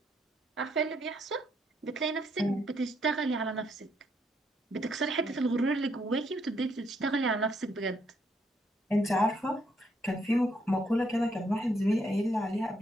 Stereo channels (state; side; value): normal; both; correlation 0.73